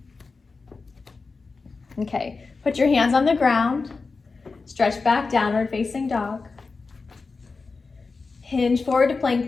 Okay, put your hands on the ground, stretch back, downward facing dog. Hinge forward to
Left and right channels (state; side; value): quieter; right; 4.3 dB